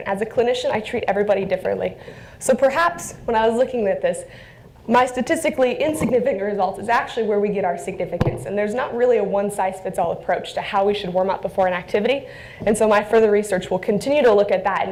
As a clinician, I treat everybody differently. So perhaps when I was looking at this, my statistically insignificant results is actually where we get our significance. And there's not really a one-size-fits-all approach to how we should warm up before an activity. And so my further research will continue to look at that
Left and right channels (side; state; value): both; identical; correlation 1.00